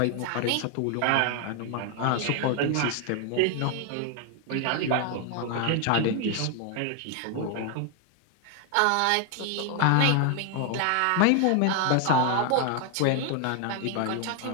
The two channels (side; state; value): both; different; correlation 0.00